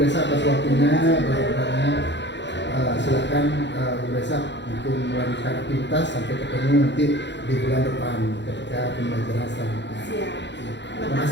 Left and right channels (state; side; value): late; right; 0.52 ms